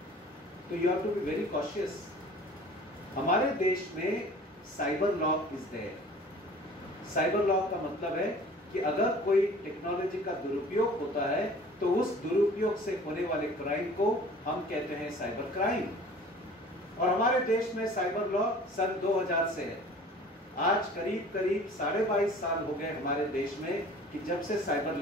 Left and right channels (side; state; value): both; normal; correlation 0.46